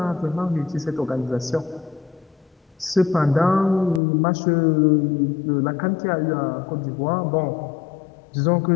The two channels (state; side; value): drops out; right; at 4.0 s